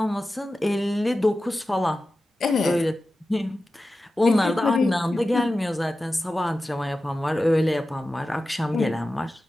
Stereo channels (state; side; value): normal; both; correlation 0.94